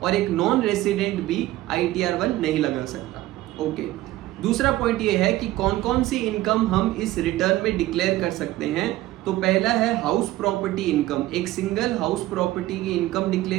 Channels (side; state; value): left; quieter; 16.3 dB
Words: और एक नॉन रेसिडेंट भी ITR-1 नहीं लगा सकता। ओके, दूसरा पॉइंट ये है कि कौन कौन सी इनकम हम इस रिटर्न में डिक्लेयर कर सकते हैं। तो पहला है हाउस प्रॉपर्टी इनकम। एक सिंगल हाउस प्रॉपर्टी की इनकम